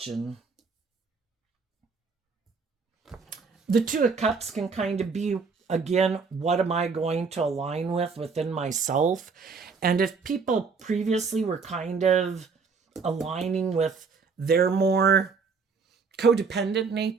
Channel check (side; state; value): left; quieter; 5.0 dB